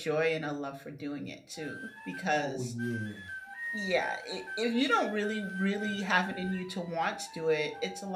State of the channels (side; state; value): both; identical; correlation 1.00